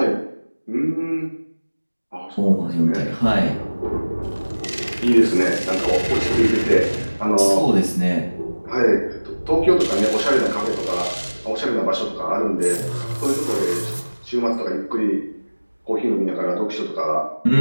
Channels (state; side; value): inverted; both; correlation -1.00